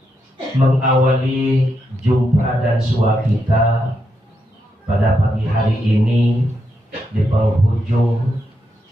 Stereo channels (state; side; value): normal; both; correlation 0.82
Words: Mengawali jumpa dan sua kita pada pagi hari ini di penghujung